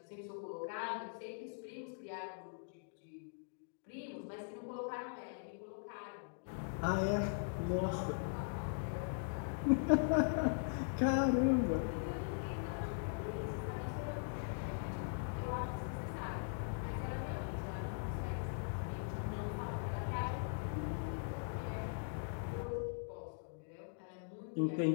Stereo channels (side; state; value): right; silent; digital silence